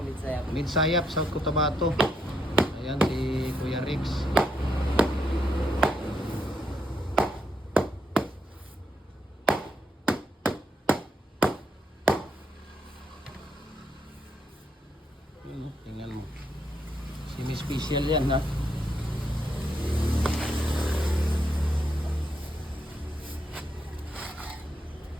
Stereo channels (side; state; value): both; normal; correlation 0.77